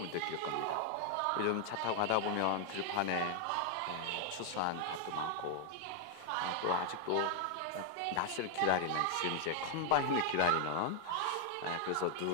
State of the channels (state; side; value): different; both; correlation 0.00